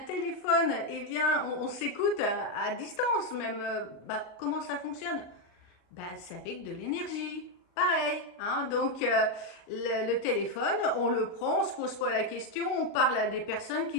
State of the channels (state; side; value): late; right; 40 ms